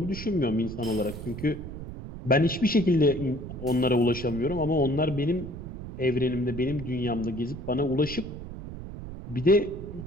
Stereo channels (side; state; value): right; noise; rumble, 10 dB below the sound